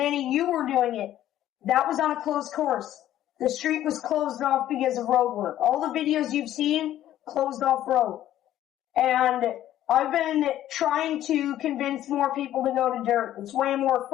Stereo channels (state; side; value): quieter; right; 12.6 dB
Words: you were doing it. That was on a closed course. The street was closed off because of road work. All the videos you've seen, closed off road. And I've been trying to convince more people to go to dirt. It's way more